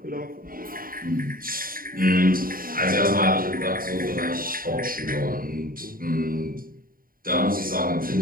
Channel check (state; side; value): late; left; 0.41 ms